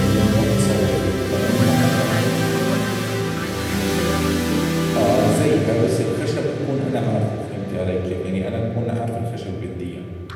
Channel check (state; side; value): identical; both; correlation 1.00